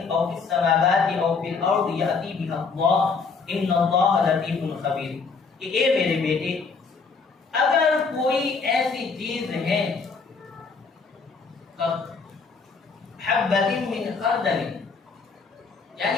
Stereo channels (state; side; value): quieter; right; 4.8 dB